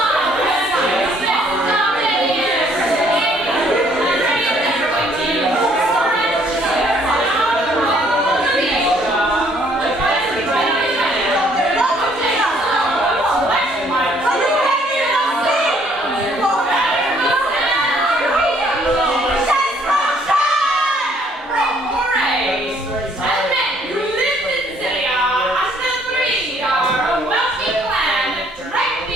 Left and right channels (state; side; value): normal; both; correlation 0.63